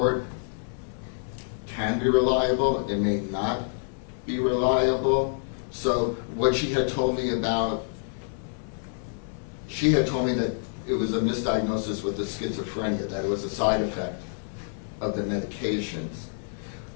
can be reliable, it may not be reliable. So what she had told me that it was a misdiagnosis with the schizophrenia, that it was a side effect of the medications.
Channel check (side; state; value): right; silent; digital silence